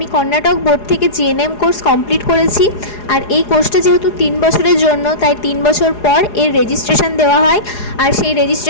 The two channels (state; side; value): late; right; 4.8 ms